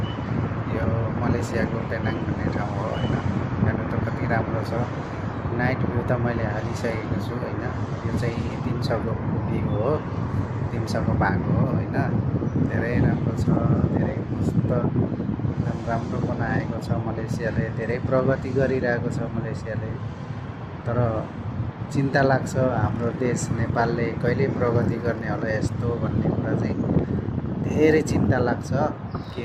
यो मलेसियाको पेनाङ भन्ने ठाउँ हो होइन। हेर्नु त कति राम्रो छ। नाइट भ्यू त मैले हालिसकेको छु होइन। यो चाहिँ 300को भ्यू हो, 300को भाग हो होइन। धेरै राम्रो छ, धेरै मस्त एकदम राम्रो बनाएको छ मलेसियाले। धेरै प्रगति गरिरहेको छ मलेसियाले। तर चिन्ता लाग्छ, हाम्रो देश नेपालले कहिले प्रगति गर्ने होला यस्तो भन्ने कुरा चाहिँ धेरै चिन्ता लाग्छ। के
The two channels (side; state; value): both; identical; correlation 1.00